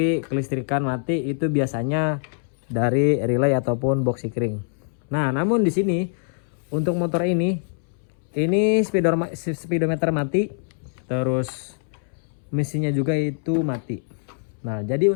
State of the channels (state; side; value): silent; right; 63 dB below the other